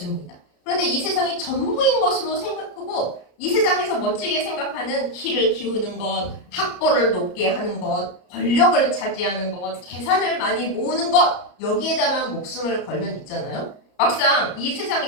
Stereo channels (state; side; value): late; right; 33 ms